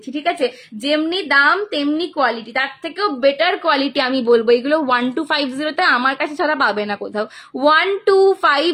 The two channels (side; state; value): both; identical; correlation 1.00